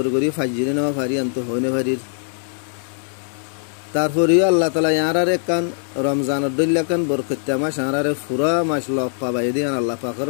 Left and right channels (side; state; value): right; silent; 65 dB below the other